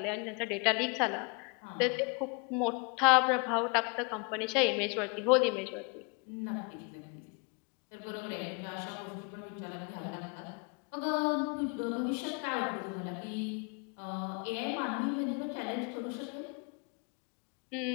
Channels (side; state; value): right; quieter; 32.9 dB